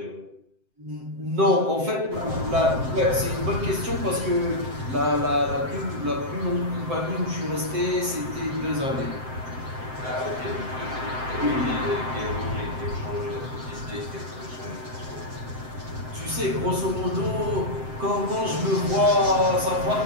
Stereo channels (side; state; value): left; late; 7.7 ms